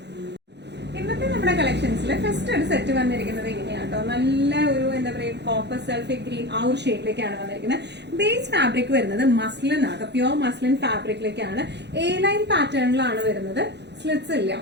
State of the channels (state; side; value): late; left; 0.50 ms